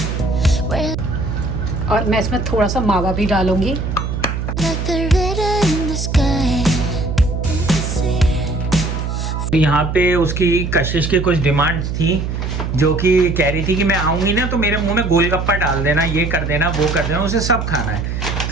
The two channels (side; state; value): right; noise; hum, 3 dB below the sound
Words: और मैं इसमें थोड़ा सा मावा भी डालूंगी। यहाँ पे उसकी कशिश की कुछ डिमांड्स थी, जो कि कह रही थी कि मैं आऊंगी ना तो मेरे मुंह में गोलगप्पा डाल देना, ये कर देना, वो कर देना, उसे सब खाना है।